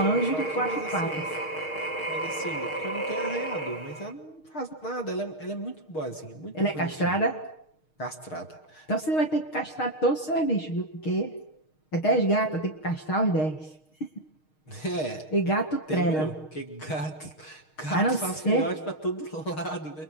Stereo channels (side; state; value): right; late; 6.5 ms